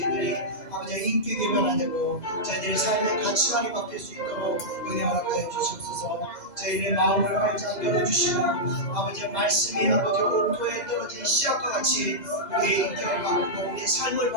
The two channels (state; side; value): late; right; 2.0 ms